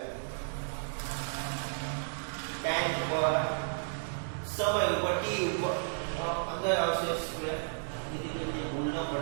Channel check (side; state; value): left; silent; digital silence